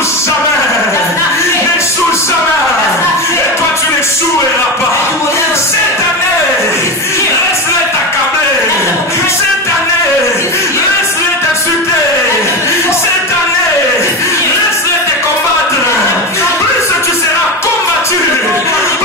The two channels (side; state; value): both; normal; correlation 0.20